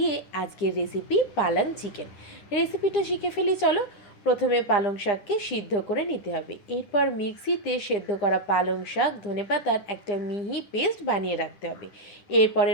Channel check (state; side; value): late; right; 9.9 ms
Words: আজকের রেসিপি পালং চিকেন। রেসিপিটা শিখে ফেলি চলো। প্রথমে পালং শাককে সিদ্ধ করে নিতে হবে, এরপর মিক্সিতে সেদ্ধ করা পালং শাক ধনেপাতার একটা মিহি পেস্ট বানিয়ে রাখতে হবে।